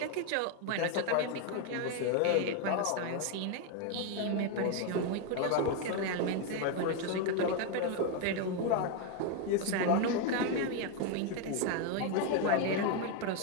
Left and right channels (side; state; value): both; different; correlation 0.01